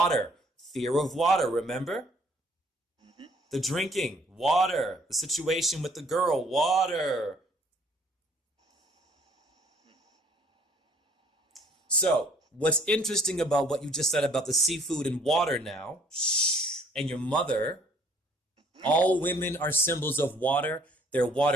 Fear of water, remember? The drinking. Water. The situation with the girl. Water. So, what's interesting about what you just said about the seafood and water now, and your mother, all women are symbols of water. They're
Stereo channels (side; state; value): both; normal; correlation 0.60